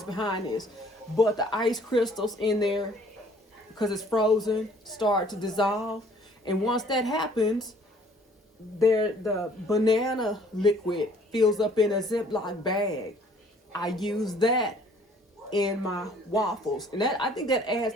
behind this, but the ice crystals in there, because it's frozen, start to dissolve. And once that happens, the banana liquid fills up in a Ziploc bag. I use that in my waffles, and I think that adds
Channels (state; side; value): normal; both; correlation 0.57